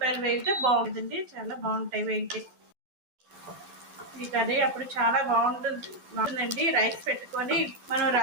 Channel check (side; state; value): left; late; 12 ms